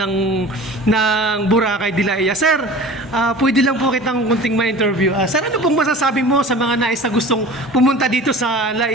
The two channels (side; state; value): both; normal; correlation 0.40